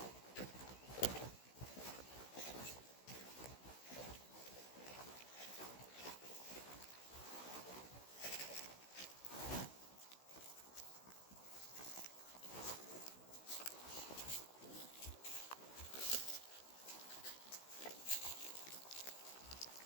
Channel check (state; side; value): late; right; 16 ms